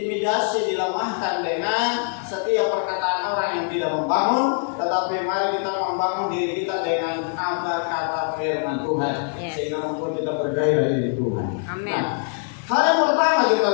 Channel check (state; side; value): silent; right; 55 dB below the other